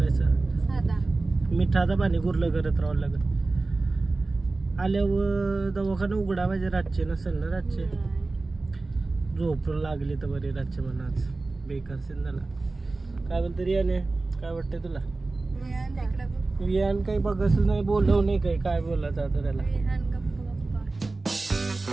असं मिठाचं पाणी गुरलं करत राहावं लागेल. आल्यावर दवाखाना उघडा पाहिजे. रातचे नसेल ना, रातचे झोप लागली तर बरी रातचे म्हणा. आज बेकार सीन झाला. काय बोलतो रियाने? काय वाटतंय तुला? विहान काही बघच नाही, बोलव नाही काही. काय बोलायचं आता त्याला?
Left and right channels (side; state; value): left; quieter; 3.4 dB